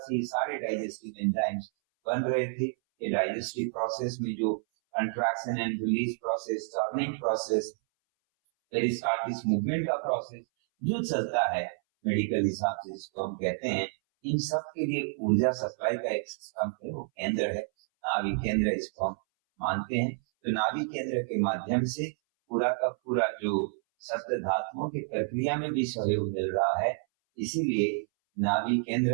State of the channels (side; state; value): left; silent; 58 dB below the other